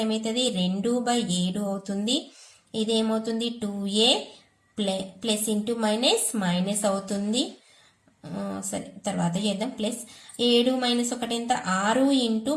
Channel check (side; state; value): both; identical; correlation 1.00